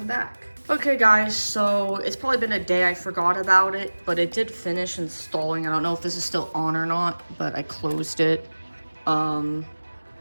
back. Okay guys, so it's probably been a day. I forgot about it, but it did finish installing. I don't know if this is still on or not, but I closed it. I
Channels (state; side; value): inverted; both; correlation -1.00